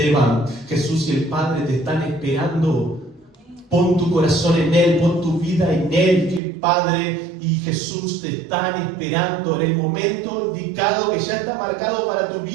Jesús y el Padre te están esperando. Pon tu corazón en Él, pon tu vida en Él, que el Padre y Jesús te están esperando en el momento indicado que ya está marcado para tu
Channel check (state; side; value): drops out; left; at 6.4 s